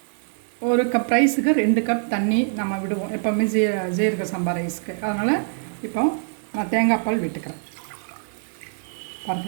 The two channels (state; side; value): silent; left; digital silence